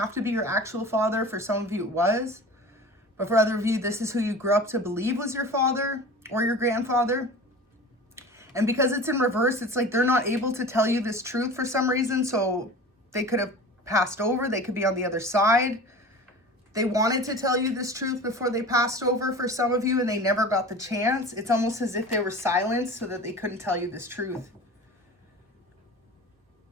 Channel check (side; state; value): both; normal; correlation 0.37